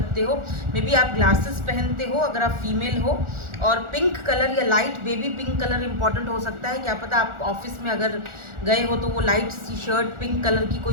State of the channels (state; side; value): late; left; 1.4 ms